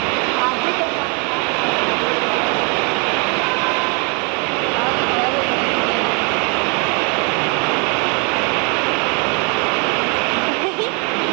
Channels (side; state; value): left; quieter; 34.4 dB